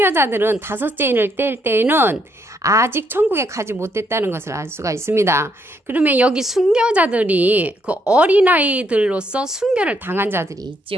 다섯째 인을 뗄 때에는 아직 천국에 가지 못했다는 것을 알 수가 있습니다. 그러면 여기 순교자들이 그 어린아이들로서 순교를 당한 자들이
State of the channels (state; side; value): normal; both; correlation 0.74